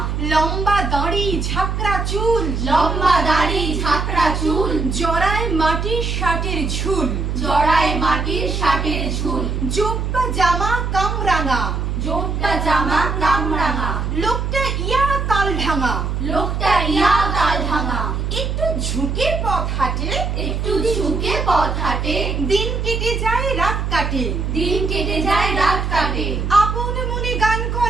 লম্বা দাড়ি ঝাঁকড়া চুল, লম্বা দাড়ি ঝাঁকড়া চুল, জড়ায় মাটির শার্টের ঝুল, জড়ায় মাটির শার্টের ঝুল, জোব্বা জামা কামরাঙা, জোটটা জামা কামরাঙা। লোকটা ইয়া তাল ঢাঙা, লোকটা ইয়া তাল ভাঙা। একটু ঝুঁকে পথ হাঁটে, একটু ঝুঁকে পথ হাঁটে, দিন কেটে যায় রাত কাটে, দিন কেটে যায় রাত কাটে। আপন মনে গান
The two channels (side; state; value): right; noise; hum, 1 dB below the sound